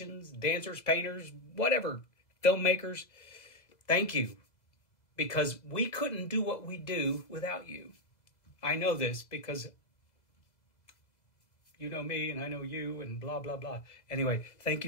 dancers, painters, whatever, filmmakers. Thank you, because we couldn't do what we do without you. I know this because you know me and I know you and blah, blah, blah. Anyway, thank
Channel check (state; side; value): late; right; 2.0 ms